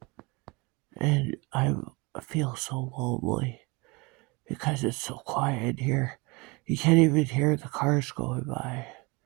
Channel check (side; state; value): left; quieter; 26.4 dB